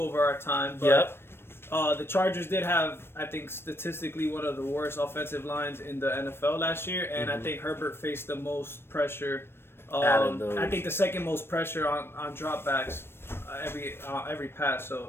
our time. But the Chargers did have, I think, statistically one of the worst offensive lines in the NFL last year, and I think Herbert faced the most pressure. I think the second most pressure on dropbacks every pass.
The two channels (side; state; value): right; late; 0.12 ms